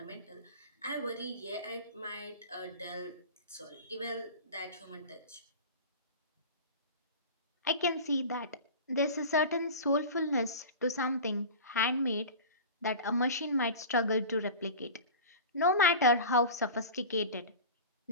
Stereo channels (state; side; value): inverted; both; correlation -0.33